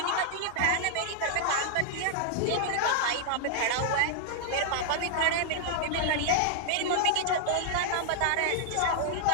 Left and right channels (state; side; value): different; both; correlation -0.01